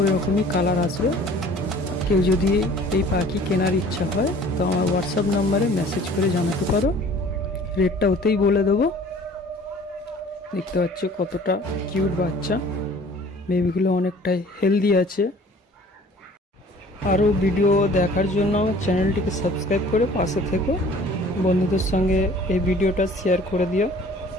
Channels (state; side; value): normal; both; correlation 0.50